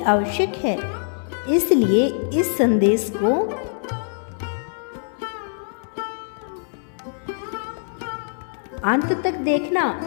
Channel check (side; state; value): right; silent; 63 dB below the other